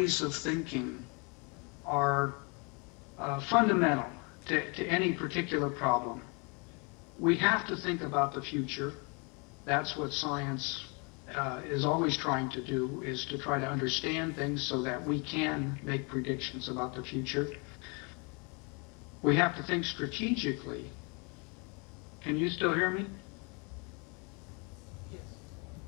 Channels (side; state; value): right; quieter; 32.5 dB